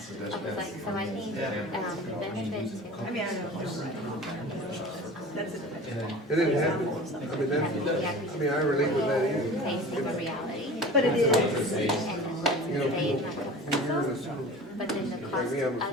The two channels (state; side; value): normal; both; correlation 0.38